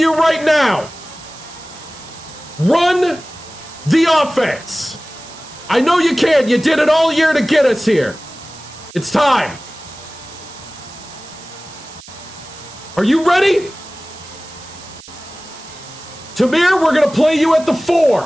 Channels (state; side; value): noise; right; hiss, 19 dB below the sound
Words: right now. Run the offense. I know you can. You did it all year to get us here. It's time. Are you ready? Tamir, we're going to play you at the